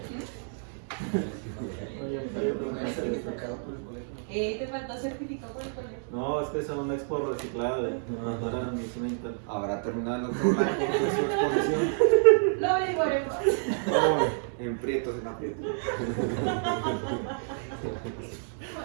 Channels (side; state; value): left; silent; digital silence